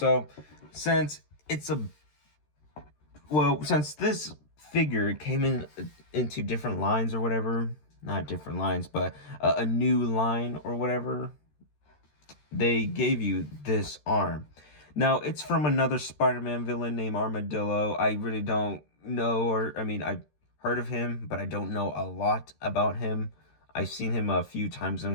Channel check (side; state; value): right; late; 13 ms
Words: since it's a since this figure came into different lines or whatever, not different lines, but a new line or whatever, they gave you this arm. Now, it's from another Spider-Man villain named Armadillo. I really don't know, or I mean, I've heard of him, but I don't know a lot about him. I've seen him a few times